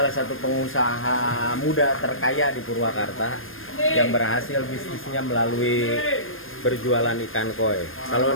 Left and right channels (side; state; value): right; late; 0.59 ms